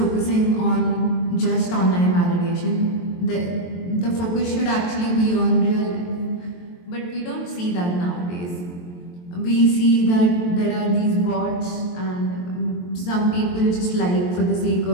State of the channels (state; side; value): late; right; 23 ms